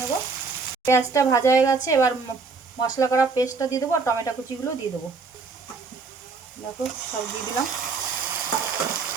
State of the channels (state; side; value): quieter; left; 4.5 dB